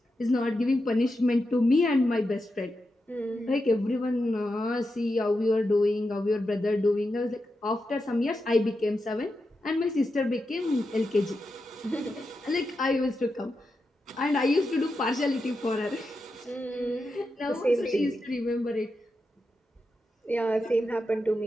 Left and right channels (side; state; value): both; normal; correlation 0.88